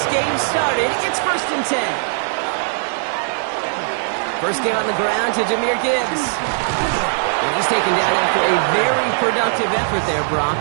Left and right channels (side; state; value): left; silent; 66 dB below the other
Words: game started. It's 1st and 10. First game on the ground to Jahmyr Gibbs. And he's taken down after a very productive effort there, Brock,